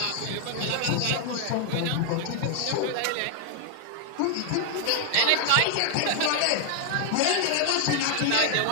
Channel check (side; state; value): both; different; correlation 0.00